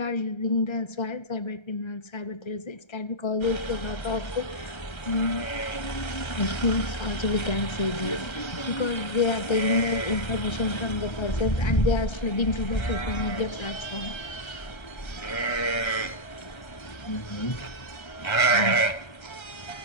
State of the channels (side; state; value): right; late; 1.3 ms